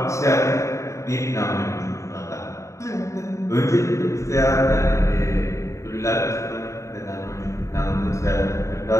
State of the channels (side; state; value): right; late; 0.14 ms